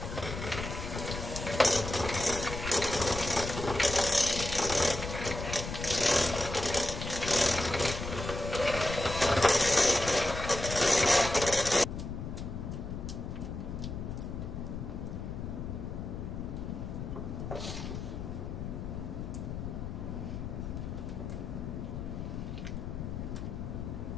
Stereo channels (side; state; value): left; noise; rumble, 6 dB below the sound